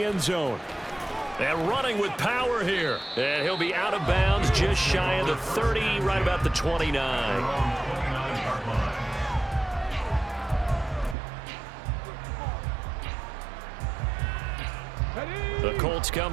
end zone. And running with power here. And he'll be out of bounds just shy of the 30, right about the 29. The Colts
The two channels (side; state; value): left; drops out; at 11.2 s